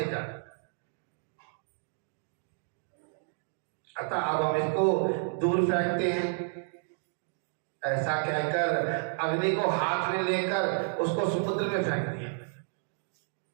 जाए? अतः अब हम इसको दूर फेंकते हैं। ऐसा कहकर अग्नि को हाथ में लेकर उसको समुद्र में फेंक दिया।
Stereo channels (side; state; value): left; silent; digital silence